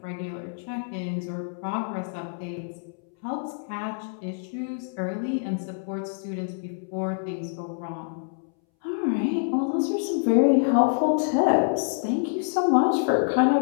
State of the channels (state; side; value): silent; right; 61 dB below the other